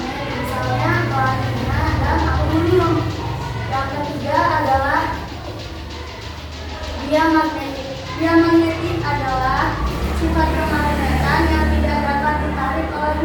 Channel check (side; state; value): both; identical; correlation 1.00